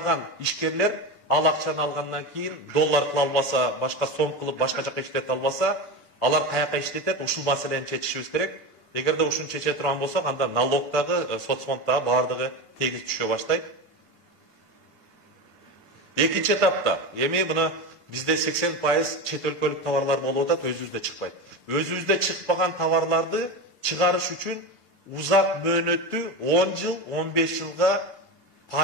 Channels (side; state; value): left; late; 6.9 ms